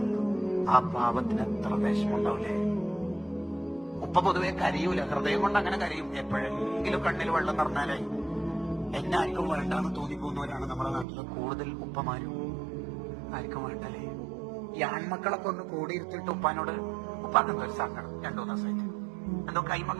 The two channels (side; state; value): left; drops out; at 11.1 s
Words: ആ പാവത്തിന് എത്ര വിഷമുണ്ടാവില്ലേ? ഉപ്പ പൊതുവെ കരയൂല, ഹൃദയം കൊണ്ട് അങ്ങനെ കരയും. എപ്പോഴെങ്കിലും കണ്ണിൽ വെള്ളം നിറഞ്ഞാലേ എന്നെ ആർക്കും വേണ്ടാന്ന് തോന്നിപ്പോകുന്നവരാണ് നമ്മുടെ നാട്ടിലെ കൂടുതൽ ഉപ്പമാരും. ആർക്കും വേണ്ടല്ലേ? ഈ ആൺമക്കളൊക്കെ ഒന്ന് കൂടിയിരുത്തിട്ട് ഉപ്പാനോട് ഉപ്പാക്കെന്തോ ഒരു സങ്കടം, 2-3 ദിവസമായിട്ട് എന്തോ കൈമ